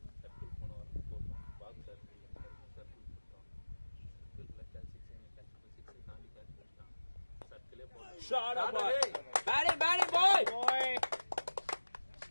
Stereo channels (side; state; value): both; inverted; correlation -1.00